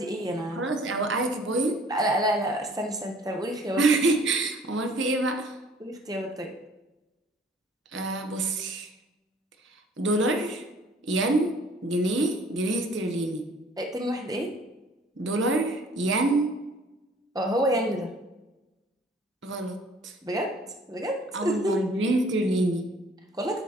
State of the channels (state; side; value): normal; both; correlation 0.54